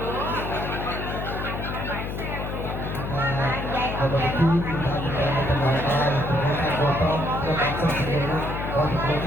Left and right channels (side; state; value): left; noise; hum, 5 dB below the sound